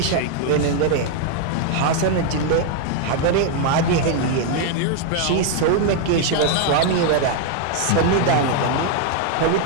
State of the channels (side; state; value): both; different; correlation 0.00